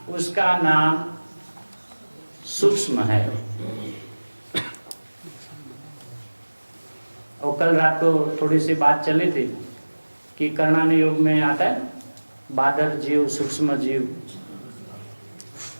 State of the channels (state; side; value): inverted; both; correlation -1.00